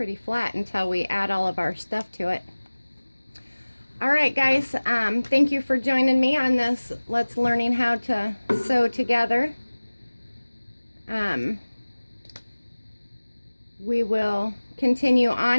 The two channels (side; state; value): both; inverted; correlation -1.00